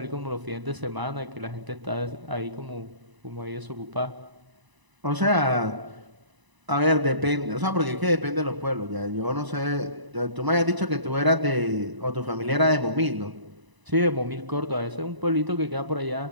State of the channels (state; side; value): late; left; 1.0 ms